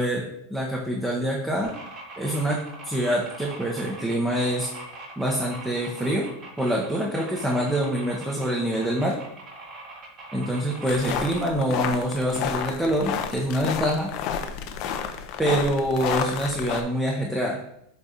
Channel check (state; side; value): normal; both; correlation 0.53